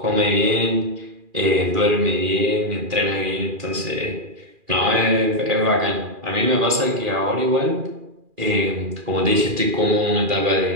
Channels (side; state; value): left; late; 2.4 ms